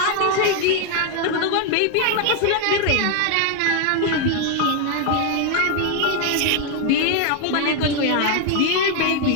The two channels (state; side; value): different; both; correlation 0.00